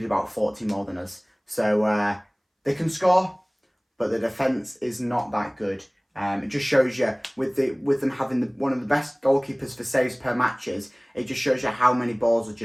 about 40 more than us. So they can score, but the defence is not that good. It just shows you, with them having one of the best goalkeepers for saves per matches, it just shows you how many balls are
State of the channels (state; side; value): identical; both; correlation 1.00